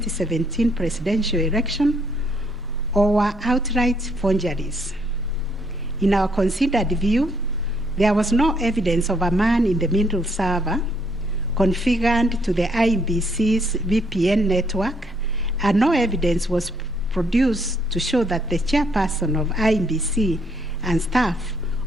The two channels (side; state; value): both; normal; correlation 0.70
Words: presidential election or were outright forgeries. In our considered view, there was no evidence of a man-in-the-middle server configured to the IEBC's VPN network, and no evidence was produced to show that the chairperson of IEBC and staff